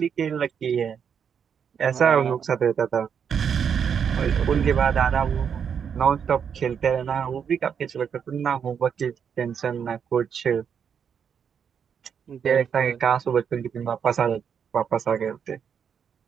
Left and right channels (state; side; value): quieter; left; 7.4 dB